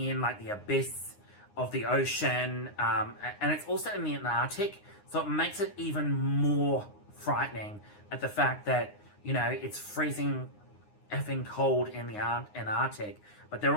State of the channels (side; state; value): right; late; 9.7 ms